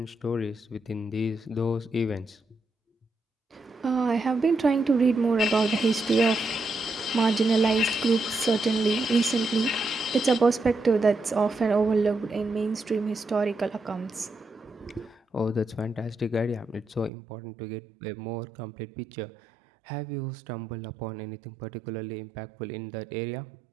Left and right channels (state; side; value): drops out; left; at 17.1 s